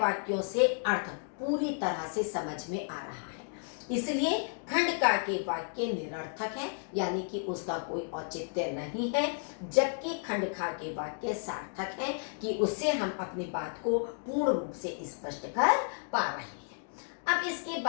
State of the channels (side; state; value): right; silent; 56 dB below the other